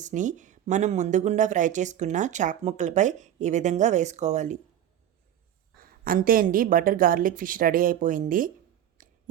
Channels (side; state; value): left; quieter; 10.8 dB